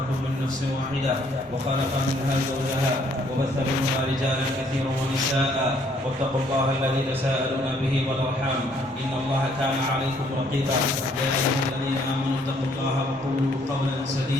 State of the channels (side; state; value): both; normal; correlation 0.65